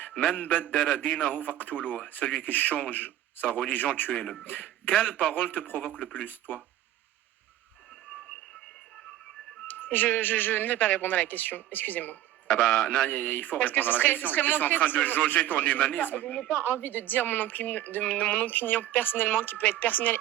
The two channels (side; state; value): left; quieter; 13.0 dB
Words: Man baddala dinahu faqtuluh, celui qui change sa religion, tuez-le. Quelle parole te provoque le plus, toi? Je ne vais pas répondre à la question, excusez-moi. Ah bah non, il faut Parce répondre à la question. Tu es en train de jauger ton humanisme. Je n'ai pas envie de dire mon opinion personnellement, qui peut être personnelle